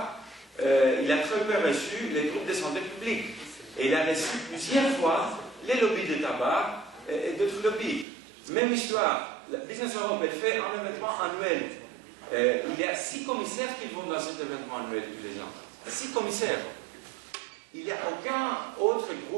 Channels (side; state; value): left; drops out; at 8.1 s